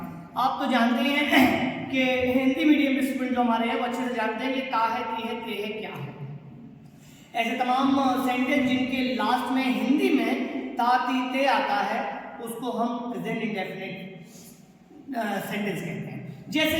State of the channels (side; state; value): both; identical; correlation 1.00